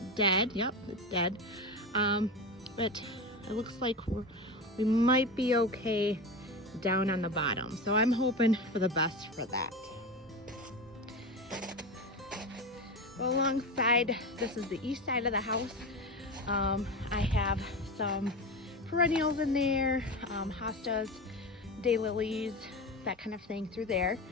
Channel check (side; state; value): both; normal; correlation 0.23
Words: dead. Yep, it's dead. But it looks like we might be okay down on the bottom. So I'm hoping for the best for that. Well, alongside, this is the east side of the house. I have some perennials in there, hostas, daylilies, that kind of thing through there.